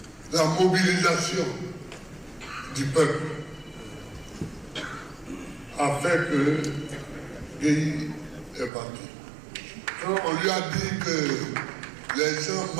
la mobilisation du peuple a fait que Gueye est parti. Quand on lui a dit que les gens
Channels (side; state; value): left; drops out; at 8.7 s